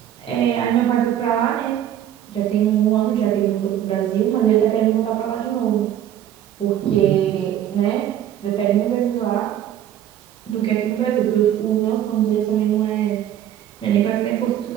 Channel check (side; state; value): left; quieter; 11.0 dB